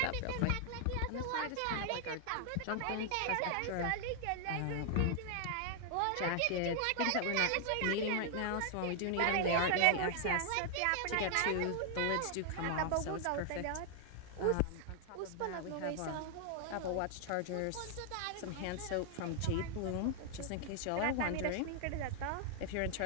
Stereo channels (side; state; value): both; different; correlation 0.00